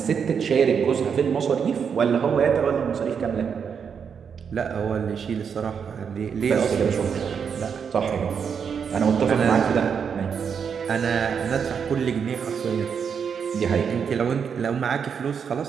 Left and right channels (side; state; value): left; quieter; 6.8 dB